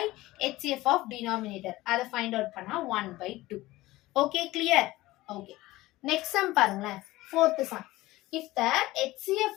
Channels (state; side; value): quieter; right; 18.2 dB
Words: HCF of denominator. அதை ஃபைண்ட் அவுட் பண்ணா 1/2. Okay, clear? Okay, next sum பாருங்களேன். Fourth sum. If the HCF